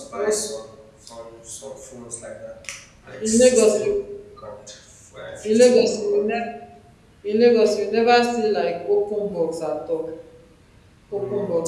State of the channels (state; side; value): identical; both; correlation 1.00